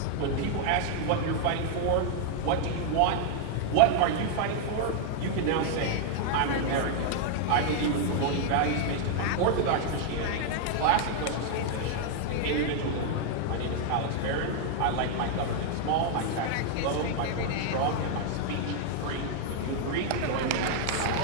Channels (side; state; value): both; different; correlation 0.00